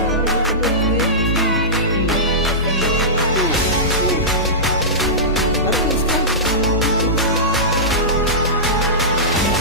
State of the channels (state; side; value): normal; both; correlation -0.16